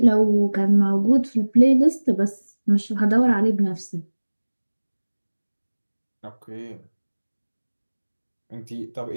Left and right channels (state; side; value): inverted; both; correlation -1.00